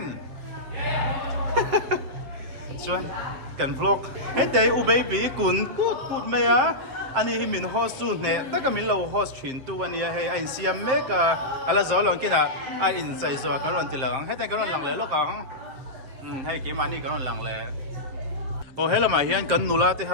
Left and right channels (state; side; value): late; left; 7.6 ms